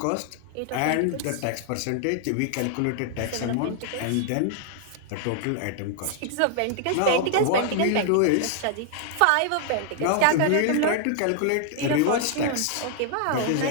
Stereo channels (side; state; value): both; different; correlation 0.00